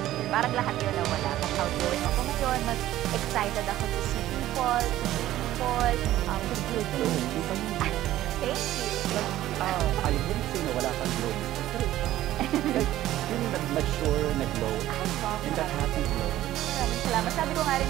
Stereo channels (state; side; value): quieter; left; 14.1 dB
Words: year. Parang lahat yun na wala. Mas outgoing ako ngayon, mas excited ako to see people, to feel things. Thank you. I wouldn't say na wala kang glow. Like, yung nag-mature, nag-glow. And that happy glow. Maraming salamat. Sabi ko nga rin